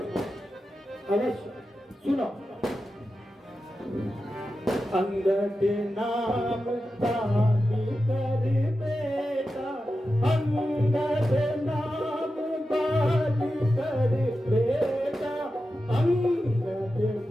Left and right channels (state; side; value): normal; both; correlation 0.91